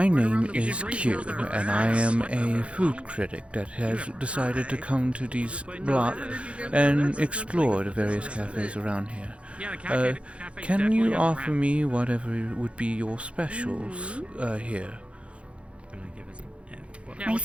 name is Kyou, and I am a food critic that has decided to come to these blocks and explore the various cafes around here. Can you offer me whatever would be your specials here? I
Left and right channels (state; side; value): late; left; 0.061 ms